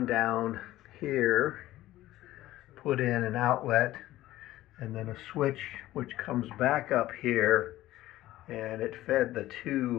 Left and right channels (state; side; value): quieter; right; 15.5 dB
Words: down here, put in an outlet and then a switch which comes back up here, and it fed